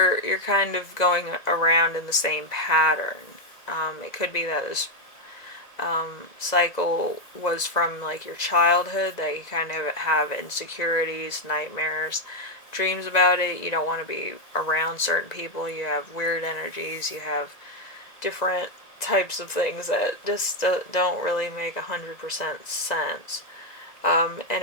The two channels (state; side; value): late; right; 1.9 ms